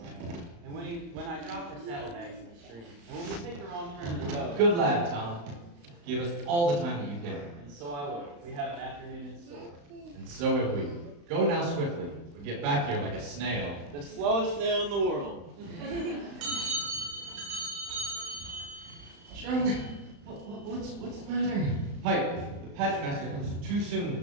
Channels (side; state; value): left; late; 35 ms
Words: and when I drop her saddlebags in the stream, and when we take the wrong turn in the road. Good lad, Tom. Give us all the time that you can. And so I will. We have an afternoon in store. And so have we. Go now swiftly. We get back here like a snail. The slowest snail in the world. John, what's the matter? Pipe, the pageant master comes too